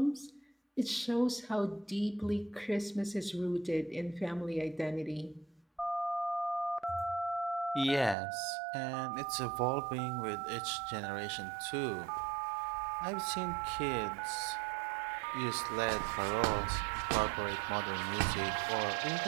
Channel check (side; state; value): left; drops out; at 8.2 s